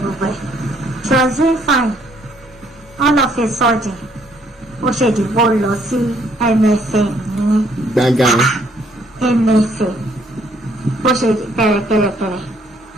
gbogbo ẹ̀ she was doing fine all of a sudden ó ṣe dìbò lọ sí MFM ní gangan MFM bó ṣe kẹrẹkẹrẹkẹrẹ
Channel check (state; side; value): normal; both; correlation 0.66